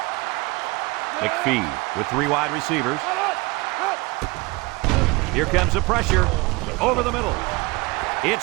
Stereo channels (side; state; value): left; quieter; 24.2 dB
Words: McPhee with 3 wide receivers. Here comes the pressure. Over the middle.